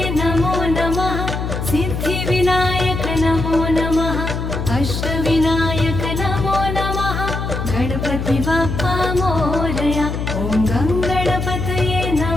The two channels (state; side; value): noise; left; hum, 3 dB below the sound